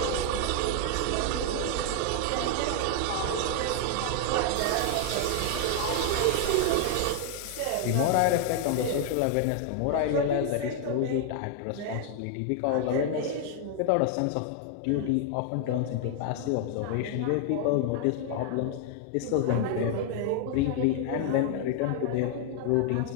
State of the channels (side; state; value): both; different; correlation 0.00